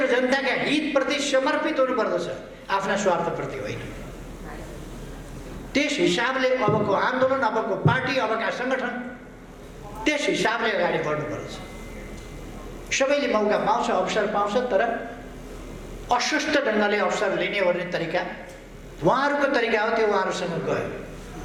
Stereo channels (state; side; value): identical; both; correlation 1.00